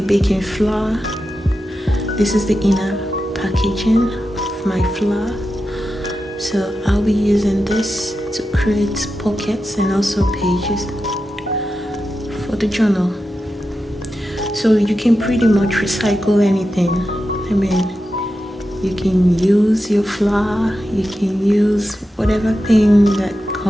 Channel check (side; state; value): both; normal; correlation 0.90